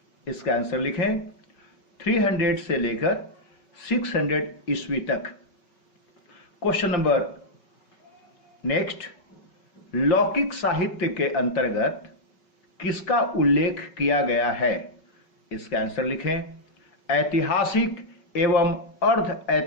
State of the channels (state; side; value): late; right; 5.3 ms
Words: इसका आंसर लिखें 300 से लेकर 600 ईस्वी तक। क्वेश्चन नंबर नेक्स्ट, लौकिक साहित्य के अंतर्गत किसका उल्लेख किया गया है? इसका आंसर लिखें ऐतिहासिक एवं अर्ध